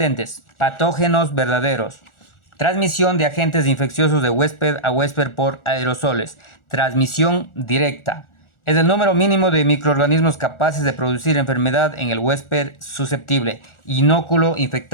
Patógenos verdaderos. Transmisión de agentes infecciosos de huésped a huésped por aerosoles. Transmisión directa. Es el número mínimo de microorganismos capaces de producir enfermedad en el huésped susceptible. Inóculo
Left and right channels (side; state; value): right; late; 1.4 ms